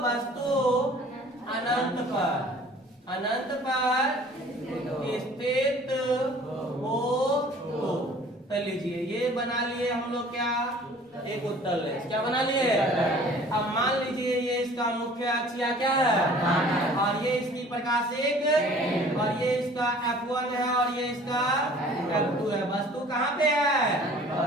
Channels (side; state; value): both; normal; correlation 0.50